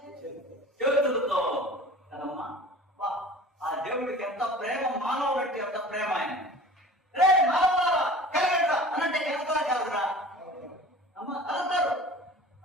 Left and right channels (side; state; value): both; normal; correlation 0.42